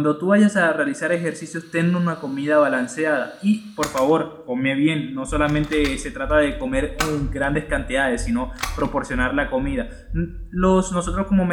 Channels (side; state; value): both; identical; correlation 1.00